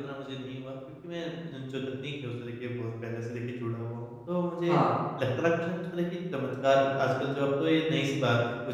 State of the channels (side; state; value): both; identical; correlation 1.00